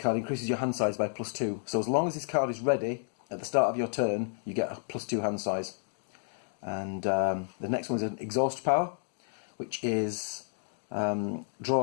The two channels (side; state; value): right; silent; 57 dB below the other